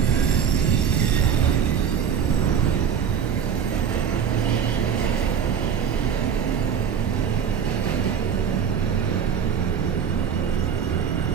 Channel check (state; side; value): quieter; left; 7.7 dB